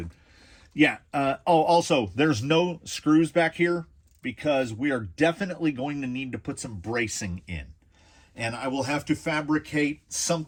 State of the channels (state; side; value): identical; both; correlation 1.00